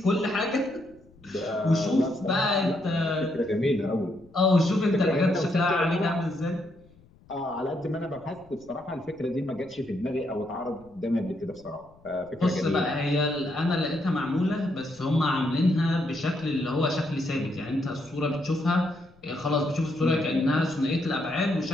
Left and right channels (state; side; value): noise; left; rumble, 27 dB below the sound